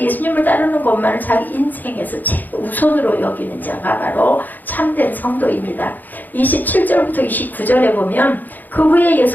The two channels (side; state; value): right; late; 0.085 ms